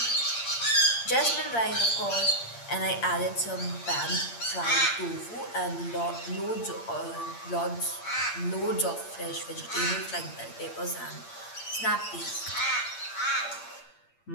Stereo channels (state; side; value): late; right; 8.7 ms